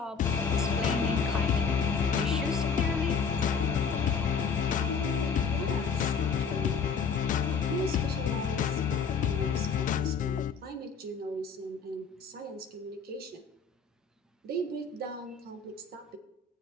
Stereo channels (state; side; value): quieter; right; 5.8 dB